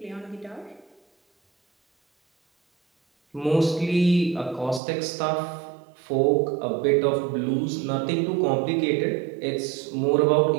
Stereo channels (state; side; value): drops out; left; at 4.8 s